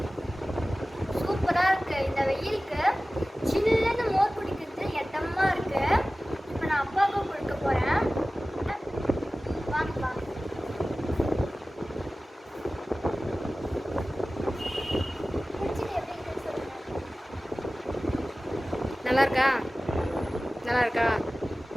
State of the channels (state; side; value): normal; both; correlation 0.97